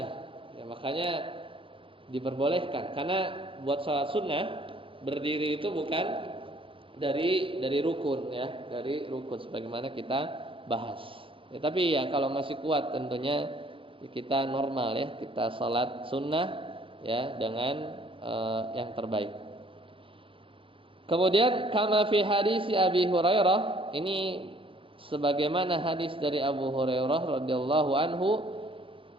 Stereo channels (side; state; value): left; late; 0.25 ms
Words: ya, makanya diperbolehkan. Karena buat sholat sunnah berdiri itu bukan dari rukun, ya, dari rukun sebagaimana kita bahas. Ya, tapi ya kalau masih kuat tentunya kita normal, ya, kita sholat sunnah, ya, dengan yang terbaik. Kemudian kama fi hadis Abi Hurairah, ini sebagaimana hadis dari Abu Hurairah radhiyallahu anhu,